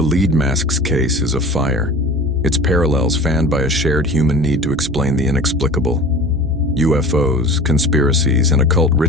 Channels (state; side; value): normal; both; correlation 0.39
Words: lead mask's case is a fire, its parallels fanned by a shared human need to explain the inexplicable. UFOs, conspiracies, and occult